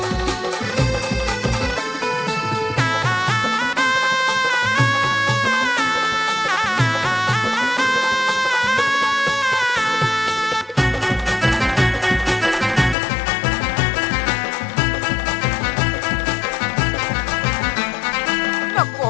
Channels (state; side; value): drops out; right; at 13.0 s